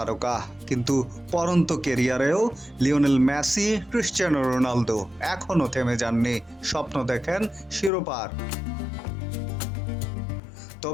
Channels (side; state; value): right; drops out; at 7.9 s